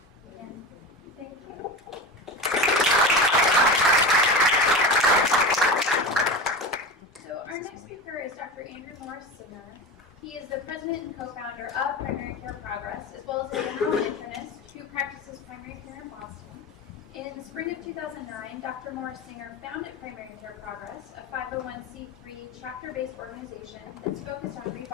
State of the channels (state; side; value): normal; both; correlation 0.26